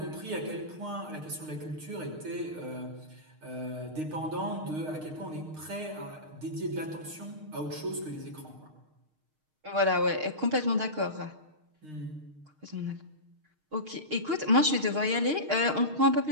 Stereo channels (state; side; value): late; left; 6.5 ms